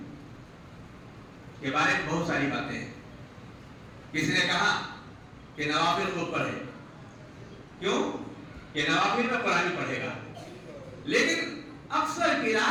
کے بارے میں بہت ساری باتیں ہیں. کسی نے کہا کہ نوافل کو پڑھے. کیوں کہ نوافل میں قرآن پڑھے گا. لیکن اکثر کی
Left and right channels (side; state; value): both; identical; correlation 1.00